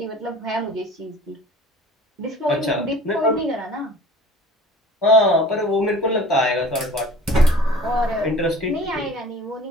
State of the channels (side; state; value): both; normal; correlation 0.45